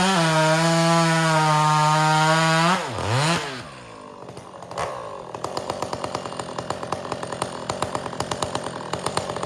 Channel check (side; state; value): both; identical; correlation 1.00